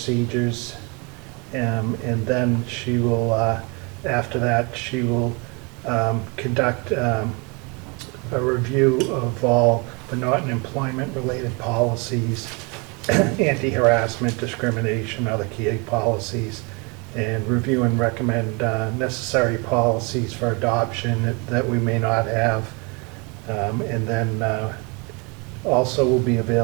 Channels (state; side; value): quieter; left; 31.1 dB